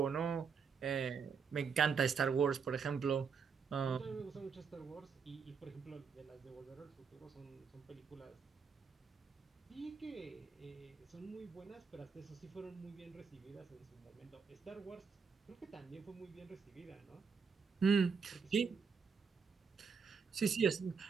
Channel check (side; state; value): left; quieter; 5.9 dB